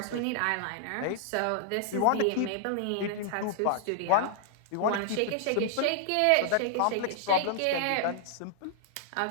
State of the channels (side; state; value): both; different; correlation -0.01